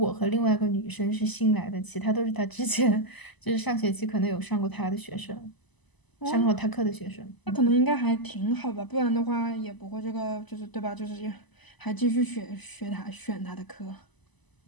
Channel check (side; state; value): right; late; 1.0 ms